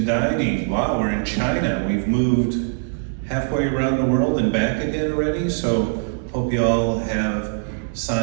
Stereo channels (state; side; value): silent; left; digital silence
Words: dining. Wow, we're in China. We've moved halfway around the world and back again already. So hope you all have